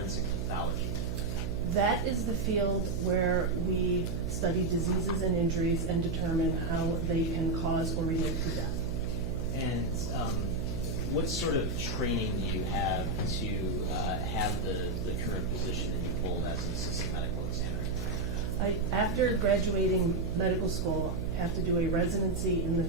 pathology? That is the field where we study diseases and injuries and determine how they can cause or relate to death. And what sort of training do you have to have the current position that you hold as an assistant medical examiner? After graduating medical school, I have to do a residency in the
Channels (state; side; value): noise; right; hum, 3 dB below the sound